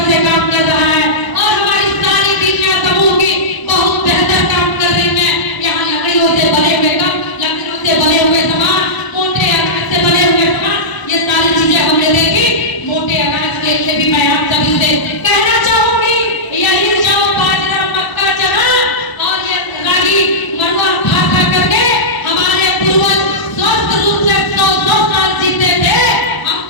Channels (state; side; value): late; right; 1.0 ms